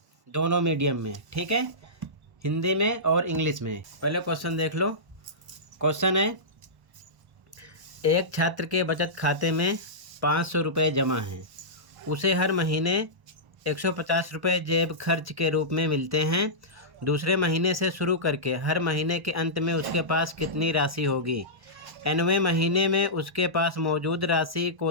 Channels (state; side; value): late; left; 1.0 ms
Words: दोनों मीडियम में, ठीक है, हिंदी में और इंग्लिश में। पहले क्वेश्चन देख लो। क्वेश्चन है, एक छात्र के बचत खाते में 500 रुपये जमा हैं, उसे हर महीने 150 रुपये जेब खर्च के रूप में मिलते हैं। दूसरे महीने से शुरू करके हर महीने के अंत में उसके पास कितनी राशि होगी? 9वें महीने में उसके पास मौजूद राशि